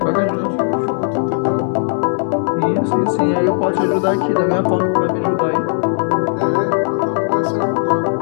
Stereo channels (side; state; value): right; silent; 62 dB below the other